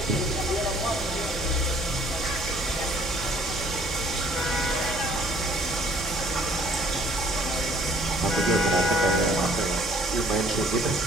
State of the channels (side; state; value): both; normal; correlation 0.58